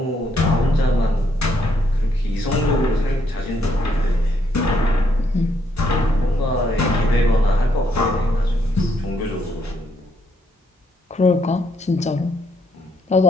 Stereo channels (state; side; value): normal; both; correlation 0.73